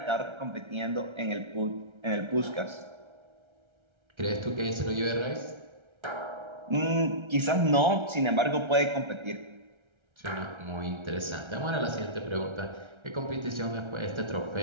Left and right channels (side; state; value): left; late; 1.3 ms